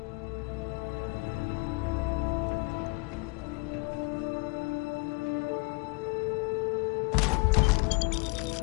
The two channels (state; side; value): quieter; right; 29.0 dB